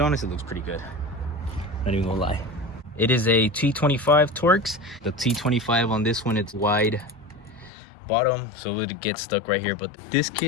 honestly looks pretty good. Not even gonna lie. It is a T25 Torx. The T25 on this one, it's wide bottom, so it would get stuck right here. But this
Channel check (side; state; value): right; drops out; at 7.7 s